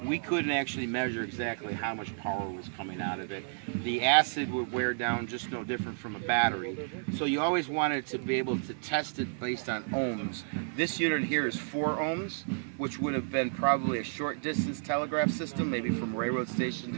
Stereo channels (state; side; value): silent; left; digital silence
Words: we couldn't actually measure exactly how much power was coming out of it. The acid would wear down just no different from a battery. So you always wanted to be able to test it based on ohms. This unit here is 4 ohms, which would have been probably a short distance telegraph system, maybe from railroad station